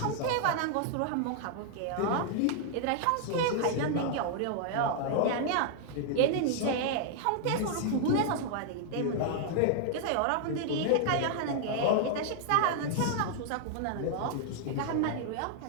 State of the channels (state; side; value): different; both; correlation -0.01